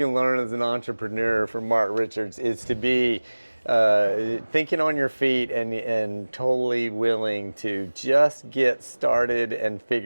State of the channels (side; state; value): both; inverted; correlation -1.00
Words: learn as an entrepreneur from Mark Richards, it's to be thinking on your feet and totally willing to just get started and